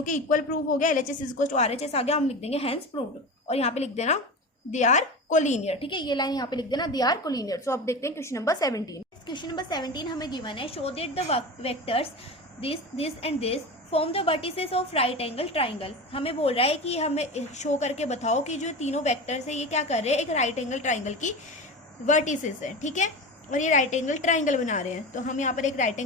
के इक्वल प्रूव हो गया, LHS is equal to RHS आ गया। हम लिख देंगे हैंस प्रूव्ड, और यहाँ पे लिख देना दे आर कोलिनियर। ठीक है, ये लाइन यहाँ पे लिख देना दे आर कोलिनियर। सो अब देखते हैं क्वेश्चन नंबर 17। क्वेश्चन नंबर 17 हमें गिवन है, show that the vectors this and this form the vertices of right angle triangle. हमें बोल रहा है कि हमें शो करके बताओ कि जो तीनों वेक्टर्स है ये क्या कर रहे हैं, एक राइट एंगल ट्राइंगल की वर्टिसेस है। ठीक है, और ये राइट एंगल ट्राइंगल बना रहे हैं। तो हम यहाँ पर एक राइट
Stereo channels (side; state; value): both; normal; correlation 0.27